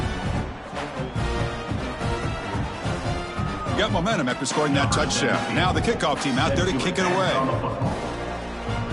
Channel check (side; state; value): both; identical; correlation 1.00